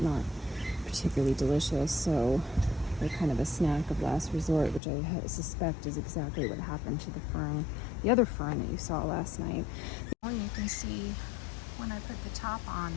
not particularly delicious. So they're kind of a snack of last resort, which I suspect is exactly what happened to the other fern that you saw last night. You can see when I put the top on,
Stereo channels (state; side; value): drops out; right; at 4.8 s